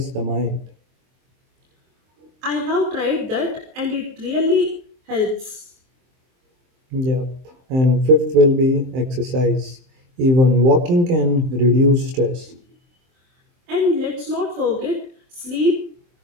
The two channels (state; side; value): late; left; 23 ms